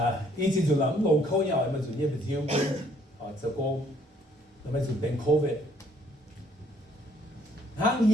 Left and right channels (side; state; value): both; normal; correlation 0.64